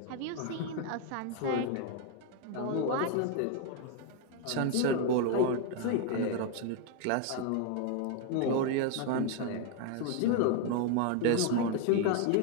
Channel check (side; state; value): both; different; correlation 0.01